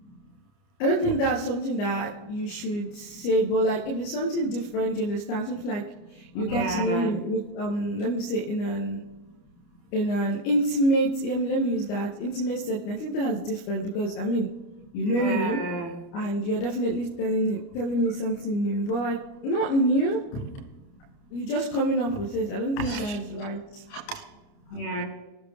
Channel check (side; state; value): right; late; 29 ms